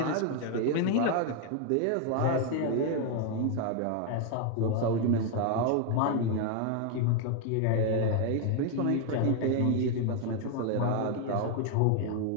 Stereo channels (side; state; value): both; different; correlation 0.01